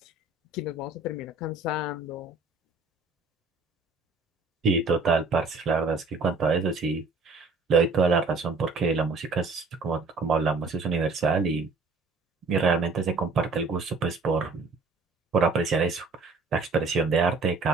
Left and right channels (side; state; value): left; quieter; 3.9 dB